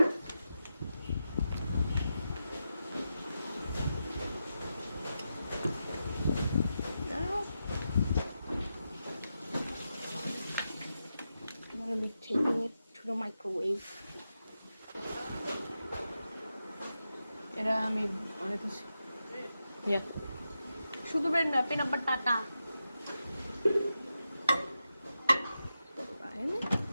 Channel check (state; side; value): inverted; both; correlation -0.88